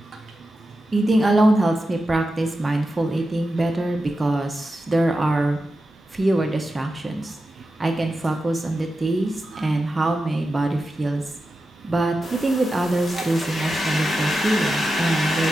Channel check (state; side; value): normal; both; correlation 0.90